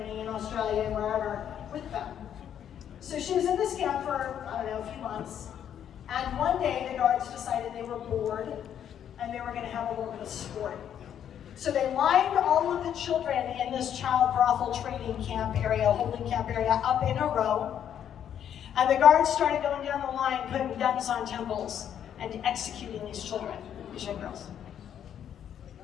in Australia, and wherever, with them. So she was in this camp for, I don't know, a few months. And one day the guards decided they were bored and they were going to have a little bit of sport. So they lined all of the children in this child brothel trading camp area, holding camp area, up in a row. And the guards started going down the line, putting guns on temples and executing these children, these young girls.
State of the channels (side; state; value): right; quieter; 9.5 dB